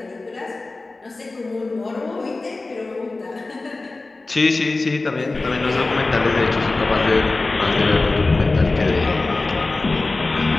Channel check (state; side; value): quieter; right; 3.3 dB